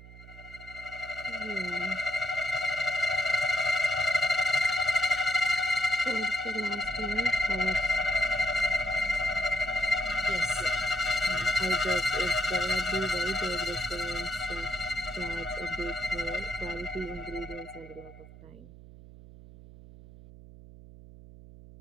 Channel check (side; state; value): right; noise; hum, 18 dB below the sound